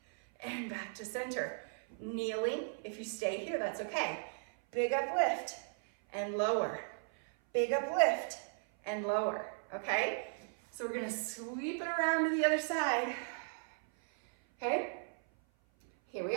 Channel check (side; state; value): left; silent; 54 dB below the other